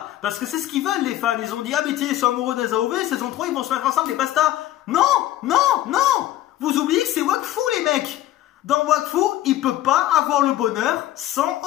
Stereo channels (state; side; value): quieter; right; 14.1 dB